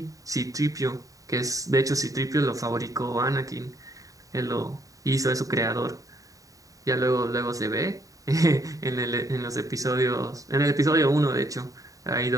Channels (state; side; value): late; left; 0.16 ms